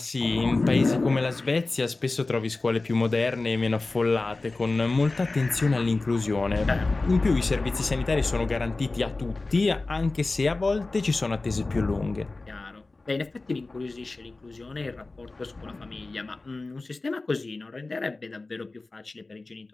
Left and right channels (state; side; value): quieter; right; 3.4 dB